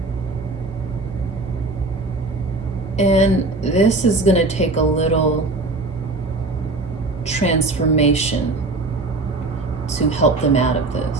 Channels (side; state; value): left; quieter; 3.2 dB